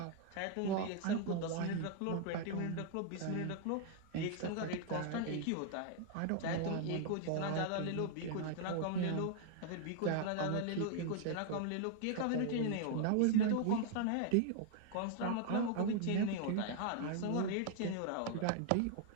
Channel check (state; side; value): different; both; correlation 0.00